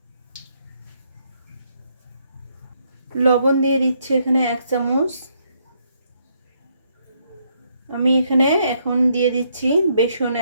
লবণ দিয়ে দিচ্ছি এখানে 1 চামচ। আমি এখানে এখন দিয়ে দিচ্ছি বেসন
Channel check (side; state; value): both; inverted; correlation -0.73